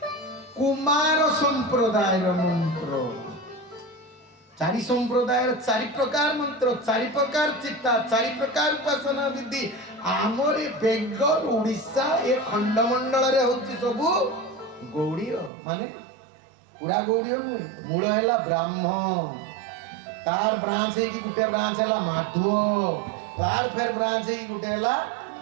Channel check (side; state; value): left; drops out; at 15.5 s